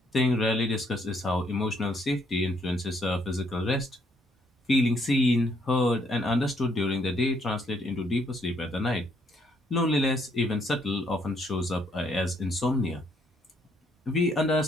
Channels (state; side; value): normal; both; correlation 0.70